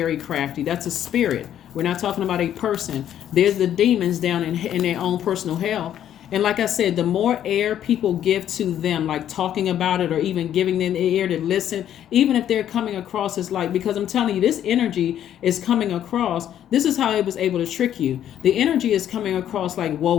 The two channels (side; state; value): right; quieter; 10.6 dB